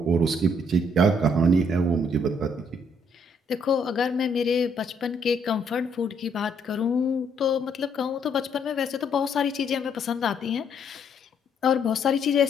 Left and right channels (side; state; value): both; normal; correlation 0.69